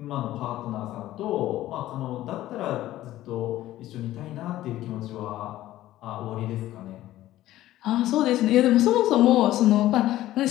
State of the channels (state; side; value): quieter; right; 14.7 dB